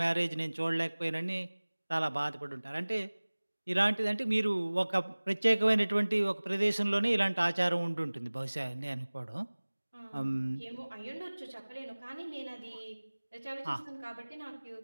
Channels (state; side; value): inverted; both; correlation -1.00